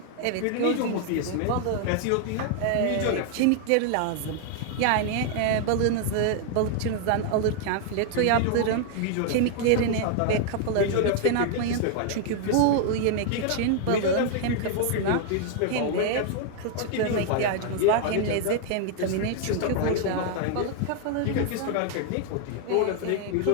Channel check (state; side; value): different; both; correlation 0.00